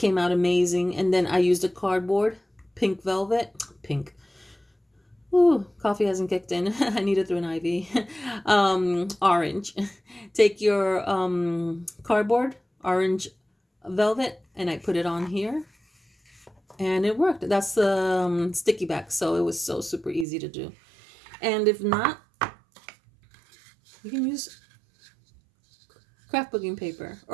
out amazing. And then I used a cardboard, pink velvet. Pink. Ooh, coffee hasn't kicked in. I need it through an IV. Orange. Take your cardboard, orange velvet, and I put it on here. And it worked. That's the sticky back. So it was so super easy to do. And if not, you can use scrapbooking paper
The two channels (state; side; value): drops out; left; at 20.2 s